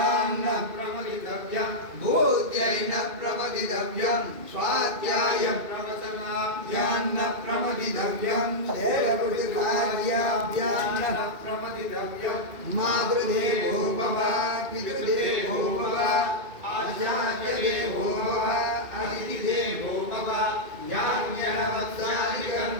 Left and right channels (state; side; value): late; left; 2.5 ms